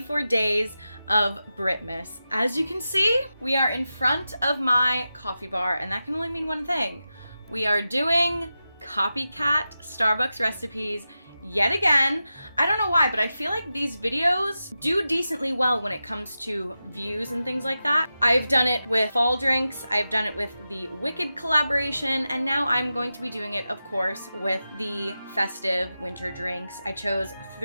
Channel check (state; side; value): inverted; both; correlation -0.92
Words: days of Britmas. As you can see, we are in front of my coffee bar, and that can only mean one thing. We are doing copycat Starbucks recipes yet again. I don't know why, but I feel like these videos do decently well when it comes to views and things like that. I've done it with fall drinks, I've done it with the Wicked collaboration, and now I'm going to be doing it, of course, with the festive winter drinks. I chose